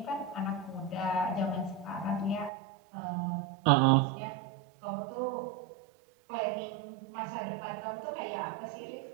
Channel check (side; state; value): left; drops out; at 2.5 s